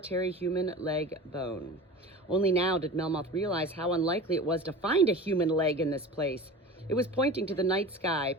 human leg bone. Only now did Melmoth realize how unlikely it was to find a human leg in this place. It was pointing to the night sky,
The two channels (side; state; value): both; normal; correlation 0.35